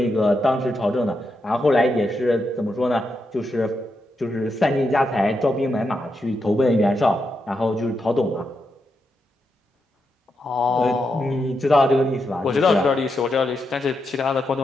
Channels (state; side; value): normal; both; correlation 0.84